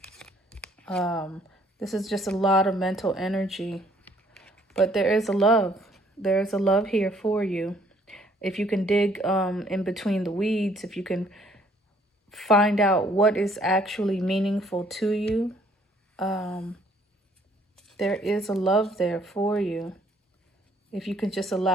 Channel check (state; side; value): normal; both; correlation 0.63